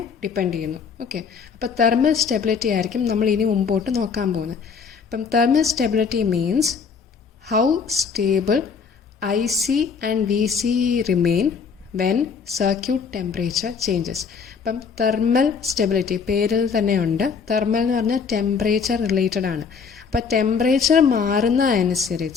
ഡിപ്പെൻഡ് ചെയ്യുന്നു. ഓക്കെ, അപ്പോൾ തെർമൽ സ്റ്റെബിലിറ്റി ആയിരിക്കും നമ്മൾ ഇനി മുമ്പോട്ട് നോക്കാൻ പോകുന്നത്. അപ്പം thermal stability means how stable IC and VC remain when circuit temperature changes. അപ്പം തെർമൽ സ്റ്റെബിലിറ്റി പേരിൽ തന്നെ ഉണ്ട്. തെർമൽ എന്ന് പറഞ്ഞാൽ ടെമ്പറേച്ചർ റിലേറ്റഡ് ആണ്. അപ്പം ടെമ്പറേച്ചർ മാറുന്ന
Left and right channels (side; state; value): right; quieter; 5.9 dB